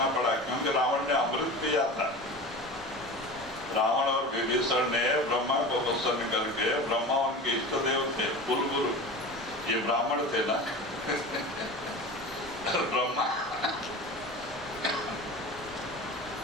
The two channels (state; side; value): normal; both; correlation 0.32